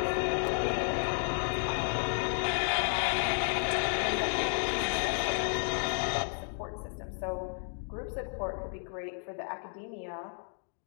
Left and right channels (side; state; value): right; silent; digital silence